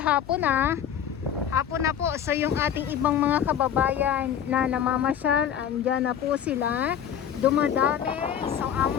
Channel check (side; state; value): right; quieter; 9.2 dB